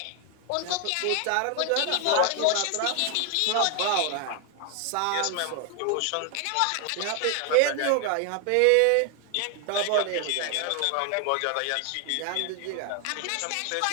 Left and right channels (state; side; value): different; both; correlation 0.00